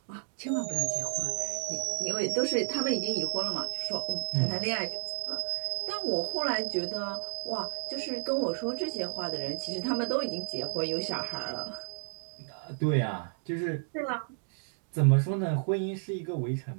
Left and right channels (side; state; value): left; silent; digital silence